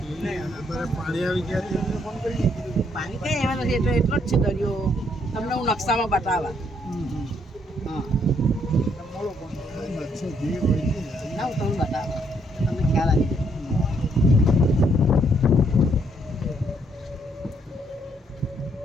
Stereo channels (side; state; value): both; normal; correlation 0.71